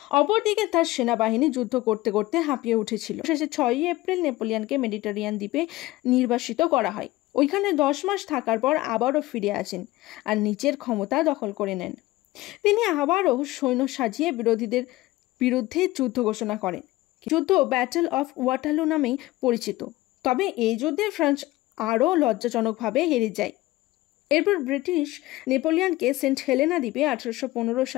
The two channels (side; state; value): right; quieter; 18.3 dB